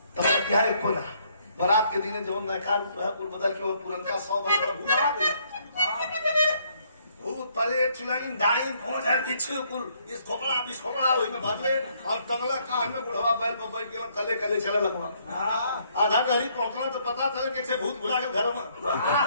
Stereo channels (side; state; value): both; inverted; correlation -0.68